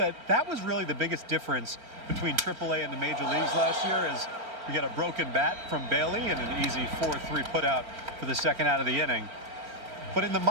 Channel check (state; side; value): late; left; 4.4 ms